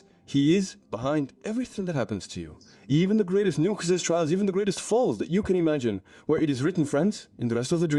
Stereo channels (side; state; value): both; identical; correlation 1.00